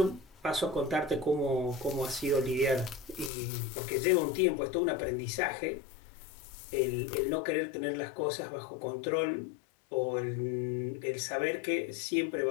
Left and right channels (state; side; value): drops out; right; at 3.3 s